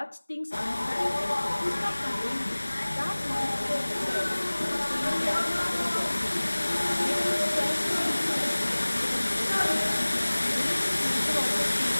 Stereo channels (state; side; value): inverted; both; correlation -1.00